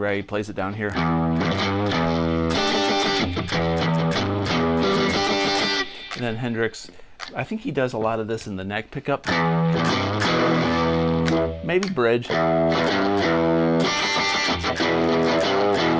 plays it down here. And then Hendrix, I think he does a lot of this in the neck pickup. Maybe bridge. Then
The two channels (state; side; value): identical; both; correlation 1.00